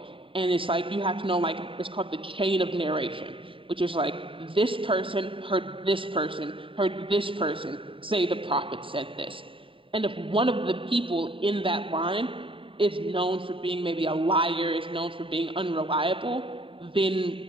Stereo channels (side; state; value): left; late; 0.25 ms